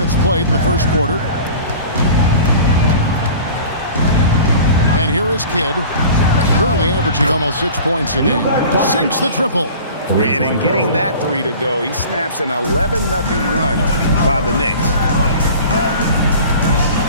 played in the first quarter. And here is Kidd, currently averaging almost 6 points a game. Sinks the triple. And in getting that 3 to go, he snaps an 11-0 run by the Knicks.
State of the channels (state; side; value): inverted; both; correlation -0.41